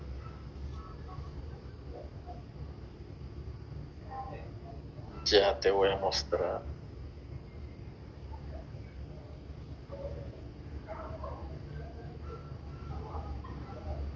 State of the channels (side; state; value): both; identical; correlation 1.00